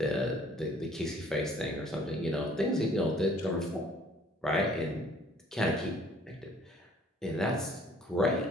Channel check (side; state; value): both; normal; correlation 0.56